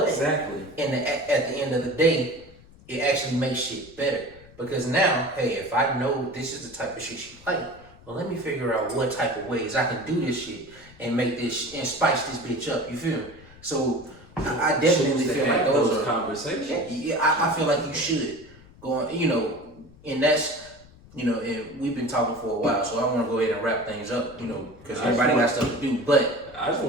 exactly. At the end of the day, it actually makes shit better because now, hey, if I know this is the type of shit she like, well, let me figure out what type of ways I can do this shit and make this and spice this bitch up. You feel me? So. I definitely feel like those are conversations. Yeah, I feel like you should go on, you know, and that's, you know, and we've been talking for a while, so I want to go ahead and wrap things up, you know, because everybody got stuff to do. But I just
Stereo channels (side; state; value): left; noise; rumble, 23 dB below the sound